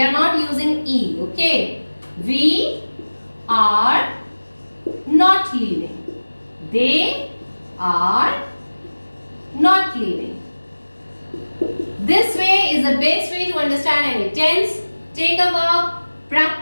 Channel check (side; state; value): both; inverted; correlation -1.00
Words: not using E, okay. We are not leaving. They are not leaving. This way is the best way to understand any tense. Take a verb,